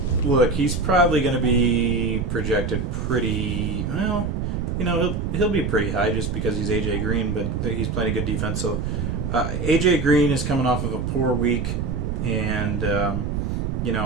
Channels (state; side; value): noise; right; rumble, 2 dB below the sound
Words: Look, he's probably going to be projected pretty well. He'll be pretty high just because he's AJ Green, but he's playing a good defense. So AJ Green is coming off of a poor week And,